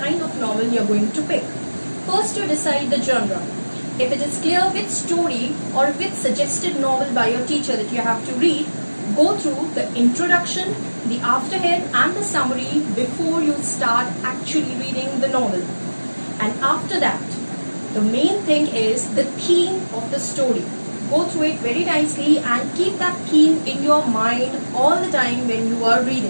of novel you're going to pick. First, you decide the genre. If it is clear which story or which suggested novel by your teacher that you have to read, go through the introduction, the afterhead and the summary before you start actually reading the novel. And after that, the main thing is the theme of the story. Go through it very nicely and keep that theme in your mind all the time when you are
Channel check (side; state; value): both; inverted; correlation -1.00